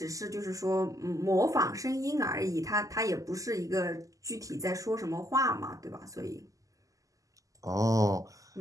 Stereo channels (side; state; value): left; late; 0.16 ms